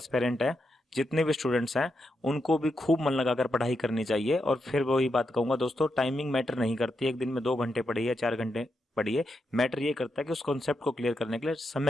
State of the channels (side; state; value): both; normal; correlation 0.84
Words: हैं, जितने भी स्टूडेंट्स हैं, उनको भी खूब मन लगाकर पढ़ाई करनी चाहिए। और फिर वही बात कहूंगा दोस्तों, टाइमिंग मैटर नहीं करती, एक दिन में 2 घंटे पढ़िए, 4 घंटे पढ़िए, मैटर ये करता है कि उस कॉन्सेप्ट को क्लियर करने के लिए